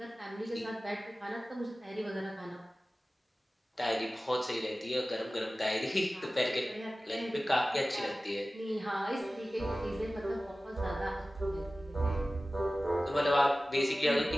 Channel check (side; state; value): both; normal; correlation 0.96